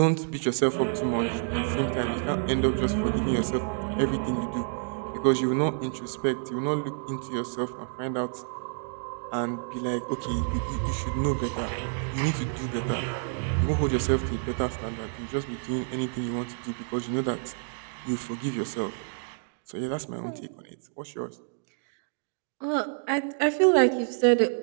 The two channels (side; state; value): left; silent; digital silence